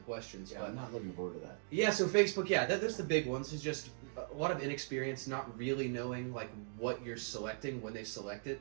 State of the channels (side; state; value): left; silent; digital silence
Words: Yeah, but I'm not looking forward to that. Yeah, so Facebook, yeah, there's the big ones. It's just a lot of inexperience, not really knowing like what you're selecting when they select it.